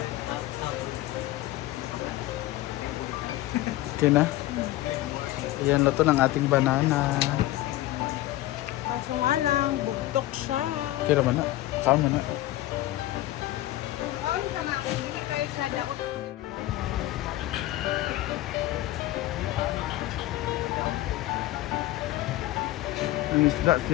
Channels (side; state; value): right; quieter; 16.0 dB